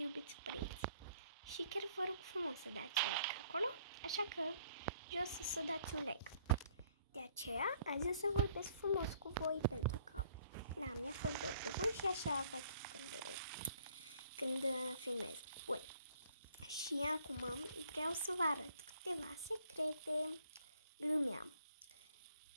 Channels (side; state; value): both; inverted; correlation -0.62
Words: părinți. Și chiar vă rog frumos să dați un like acolo, așa că jos să dați un like. De aceea, azi o să vorbesc frumos cu voi pentru că mi-a fost dor de voi și așa fac când filmez. Bun. Și acum vreau să vă arăt câteva secrete. Glumeam,